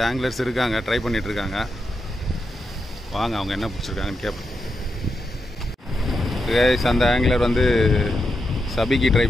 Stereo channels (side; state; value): both; normal; correlation 0.86